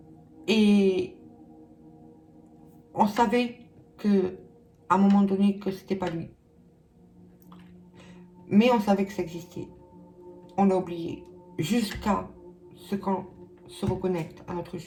Et on savait que à un moment donné que c'était pas lui. Mais on savait que ça existait. On l'a oublié. Jusqu'à ce qu'on se reconnecte à notre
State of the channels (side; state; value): both; identical; correlation 1.00